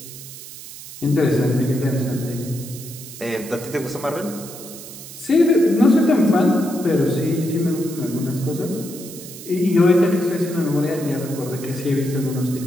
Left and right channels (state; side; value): noise; right; hiss, 14 dB below the sound